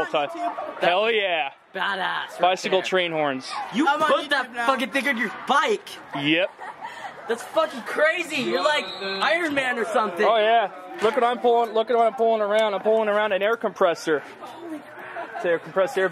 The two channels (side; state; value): both; identical; correlation 1.00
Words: time. Hell yeah! Badass. Bicycle train horns. You put that fucking thing on your bike. Yep. That's fucking crazy. You're like Iron Man or something. Oh yeah. Look what I'm pulling. Look at what I'm pulling around. I'm pulling around an air compressor. To compress air